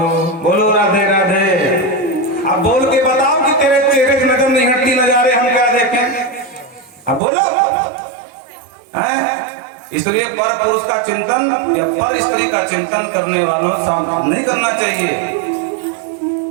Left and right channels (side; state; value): left; drops out; at 7.2 s